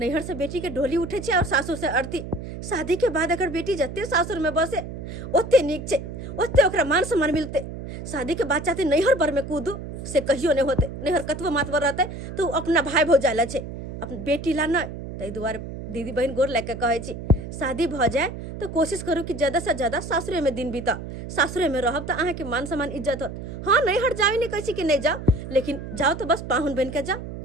से बेटी के डोली उठे छे और सासुर से अर्थी। शादी के बाद अगर बेटी जते सासुर में बसे ओते नीक छे, ओते ओकरा मान सम्मान मिलते। शादी के बाद चाहते नैहर पर में कूदू से कहियो नहीं होते, नैहर कतबो मातवर रहते तो अपना भाई भौजाइला छे, अपन बेटी ला नहीं। ताहि दुआरे दीदी बहन गोर लेके कहे छी, शादी भ जाए तो कोशिश करू कि ज़्यादा से ज़्यादा सासुरे में दिन बीता, सासुरे में रहब तो अहाँ के मान सम्मान इज्जत होत। हाँ नहीं हट जाओ, नहीं कही कि नहीं जाओ, लेकिन जाओ तो बस पाहुन बन के जाओ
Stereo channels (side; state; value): right; noise; hum, 9 dB below the sound